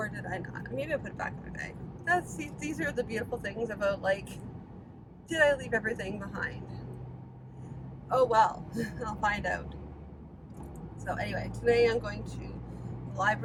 did I not? Maybe I put it back in my bag. These are the beautiful things about, like, did I leave everything behind? Oh well, I'll find out. So anyway, today I'm going to the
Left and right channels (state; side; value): identical; both; correlation 1.00